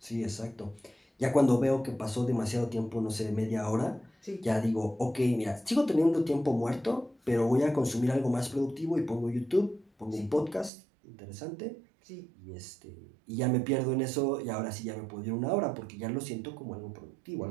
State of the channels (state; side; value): drops out; left; at 10.7 s